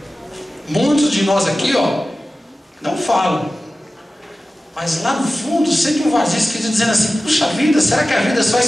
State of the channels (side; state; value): both; normal; correlation 0.95